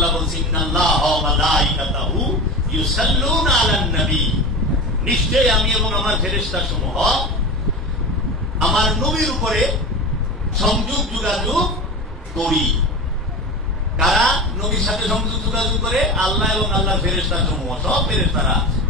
বলছেন, ইন্নাল্লাহা ওয়া মালাইকাতাহু ইউসাল্লুনা আলান নবী, নিশ্চয়ই আমি এবং আমার ফেরেশতা সমূহ আমার নবীর উপরে সংযোগ যোগাযোগ করি। কারা নবীর সাথে সংযোগ যোগাযোগ করে? আল্লাহ এবং আল্লাহর ফেরেশতা সমূহ, সব ফেরেশতারা,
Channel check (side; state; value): both; normal; correlation 0.28